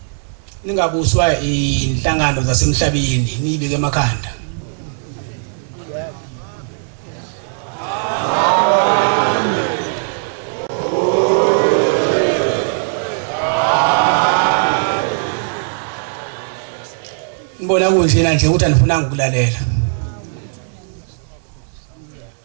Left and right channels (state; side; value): silent; left; digital silence